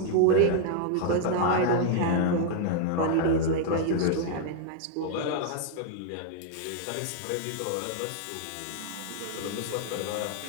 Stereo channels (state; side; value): different; both; correlation 0.00